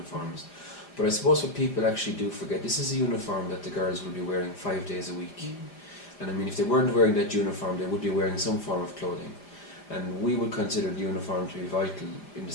But I suppose what people actually do forget, this is a uniform that the girls will be wearing 5 days a week. And if they weren't wearing that uniform, they would be wearing some form of clothing. And we would consider the uniform to be vital in the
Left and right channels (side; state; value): right; late; 4.9 ms